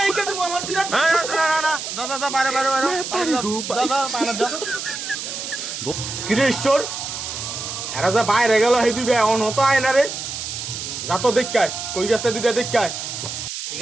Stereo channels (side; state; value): right; noise; hiss, 6 dB below the sound